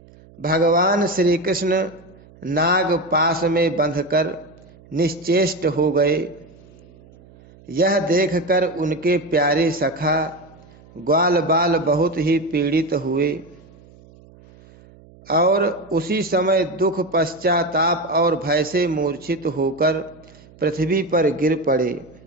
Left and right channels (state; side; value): noise; right; hum, 25 dB below the sound